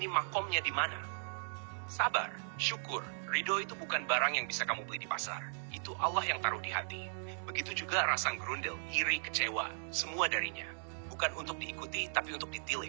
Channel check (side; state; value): left; silent; digital silence